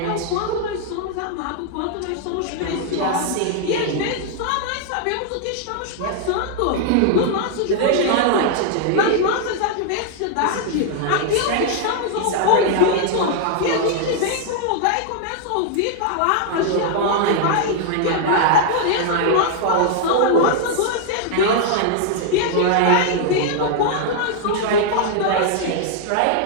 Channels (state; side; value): different; both; correlation 0.00